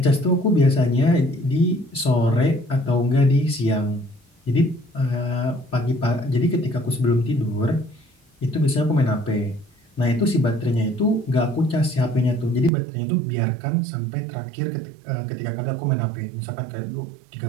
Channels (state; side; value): drops out; left; at 12.7 s